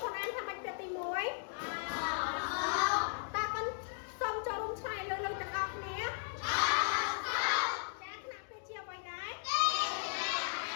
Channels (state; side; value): silent; right; digital silence